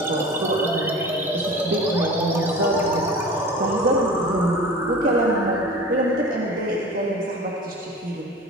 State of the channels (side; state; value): both; normal; correlation 0.37